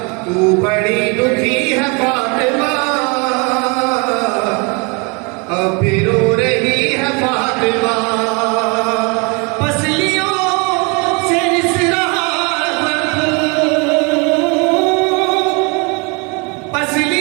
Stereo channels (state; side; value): quieter; left; 31.4 dB